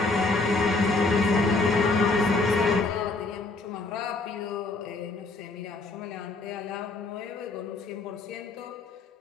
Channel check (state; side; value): quieter; right; 3.4 dB